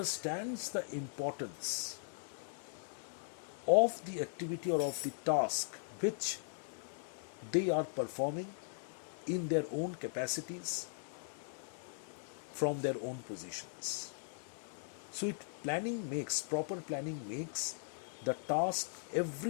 the importance of the activity or of the task which they are performing in their own capacities from their own positions. So proper planning makes the task,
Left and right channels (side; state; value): right; silent; 52 dB below the other